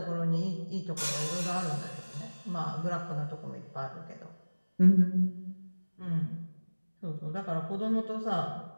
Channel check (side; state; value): both; inverted; correlation -1.00